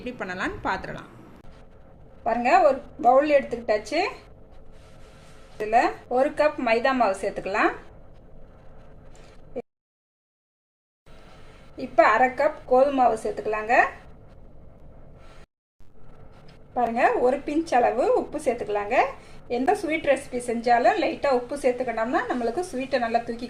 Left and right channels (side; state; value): both; identical; correlation 1.00